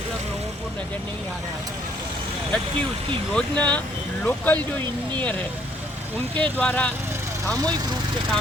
लोगों को नज़र नहीं आ रहा है। जबकि उसकी योजना लोकल जो इंजीनियर है उनके द्वारा सामूहिक रूप से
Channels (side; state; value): both; normal; correlation 0.66